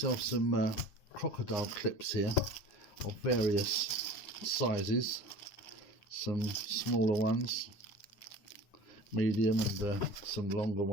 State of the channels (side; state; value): right; late; 9.8 ms